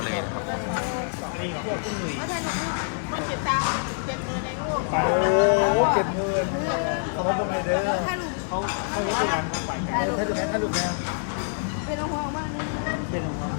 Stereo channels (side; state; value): right; silent; digital silence